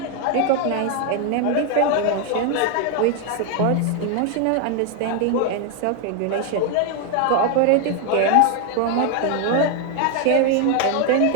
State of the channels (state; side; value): different; both; correlation 0.01